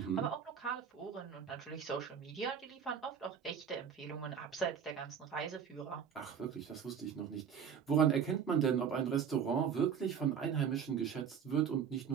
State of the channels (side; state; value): left; quieter; 7.5 dB